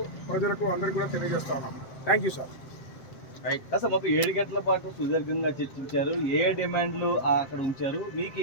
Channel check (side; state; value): right; late; 7.9 ms